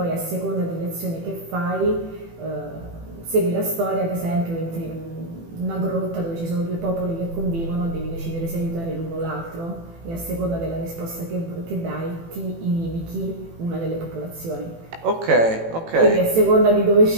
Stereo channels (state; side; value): late; left; 18 ms